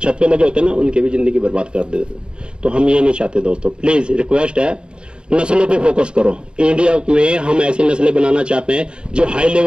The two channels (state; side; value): late; left; 0.051 ms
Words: पे लगे होते हैं ना, उनकी भी जिंदगी बर्बाद कर देते। तो हम ये नहीं चाहते दोस्तों, प्लीज रिक्वेस्ट है, नस्लों पे फोकस करो। इंडिया में हम ऐसी नस्लें बनाना चाहते हैं जो हाई